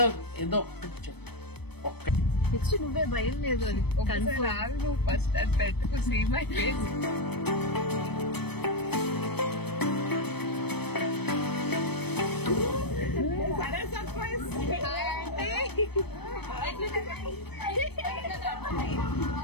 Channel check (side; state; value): right; late; 0.97 ms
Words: నెక్స్ట్ నువ్వే భయం లేదు అని ఫస్ట్ అది పెట్టుకు సీ మై ఫేస్.